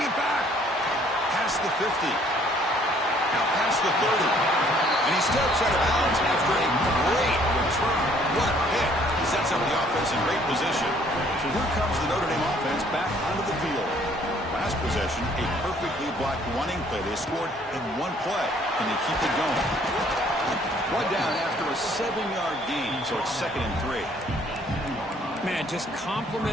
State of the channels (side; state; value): both; normal; correlation 0.61